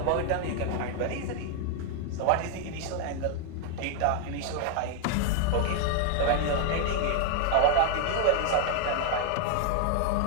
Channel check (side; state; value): both; different; correlation 0.00